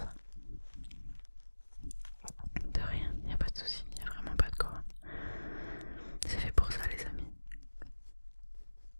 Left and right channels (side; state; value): both; inverted; correlation -1.00